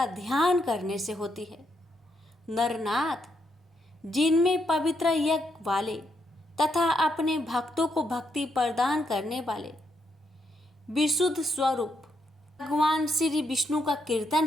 ध्यान करने से होती है। नरनाथ, जिनमें पवित्र यज्ञ वाले तथा अपने भक्तों को भक्ति प्रदान करने वाले विशुद्ध स्वरूप भगवान श्री विष्णु का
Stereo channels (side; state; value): both; normal; correlation 0.78